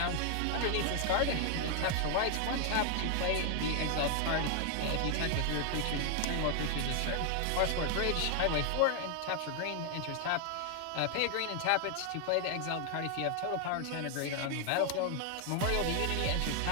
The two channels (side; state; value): both; different; correlation 0.00